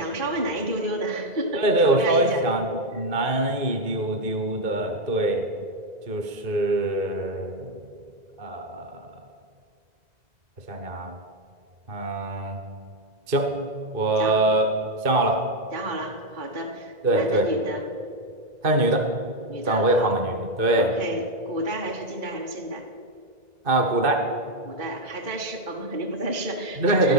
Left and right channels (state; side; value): late; left; 2.0 ms